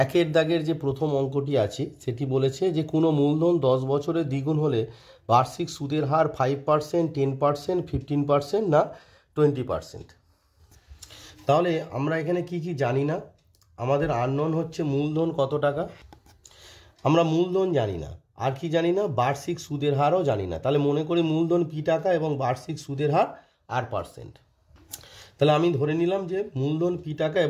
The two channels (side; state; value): both; identical; correlation 1.00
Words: দাগের যে প্রথম অঙ্কটি আছে সেটি বলেছে যে কোনো মূলধন 10 বছরে দ্বিগুণ হলে বার্ষিক সুদের হার 5%, 10%, 15% না 20%। তাহলে আমরা এখানে কি কি জানি না। আমাদের আননোন হচ্ছে মূলধন কত টাকা, আমরা মূলধন জানি না। আর কি জানি না, বার্ষিক সুদের হারও জানি না। তাহলে মনে করি মূলধন পি টাকা এবং বার্ষিক সুদের হার R%। তাহলে আমি ধরে নিলাম যে মূলধন পি টাকা